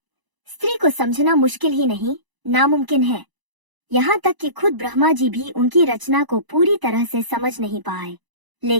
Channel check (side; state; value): left; late; 1.0 ms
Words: स्त्री को समझना मुश्किल ही नहीं, नामुमकिन है। यहाँ तक कि खुद ब्रह्मा जी भी उनकी रचना को पूरी तरह से समझ नहीं पाए।